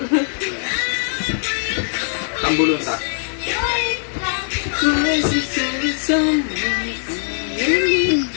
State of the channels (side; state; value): right; silent; digital silence